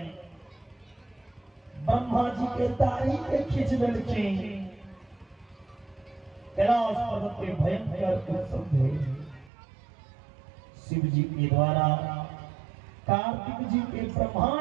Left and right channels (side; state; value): left; drops out; at 9.5 s